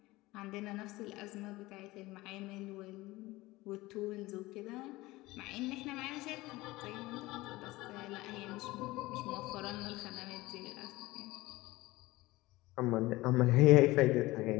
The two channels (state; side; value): quieter; right; 19.6 dB